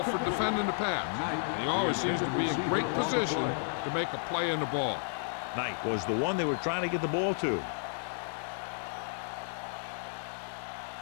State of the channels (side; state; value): right; silent; digital silence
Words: for defending the pass. He always seems to be in great position to make a play in the ball. Knight was the one they were trying to get the ball to.